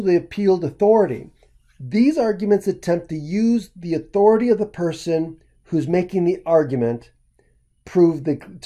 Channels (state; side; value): identical; both; correlation 1.00